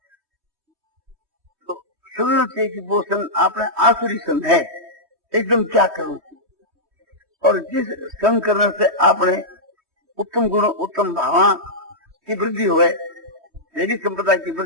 तो समझना चाहिए कि वो संग आपने आसुरी संग है, एकदम त्याग करना चाहिए। और जिस संग करने से आपने उत्तम गुण, उत्तम भावना की वृद्धि हुए, देवी संप्रदाय की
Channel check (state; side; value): late; left; 3.2 ms